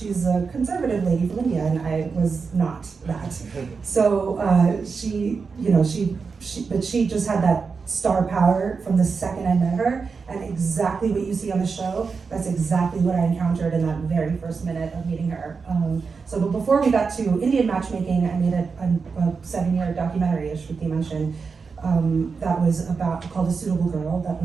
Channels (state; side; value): quieter; left; 5.1 dB